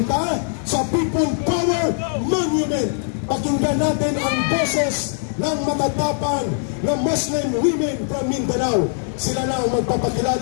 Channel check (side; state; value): right; silent; digital silence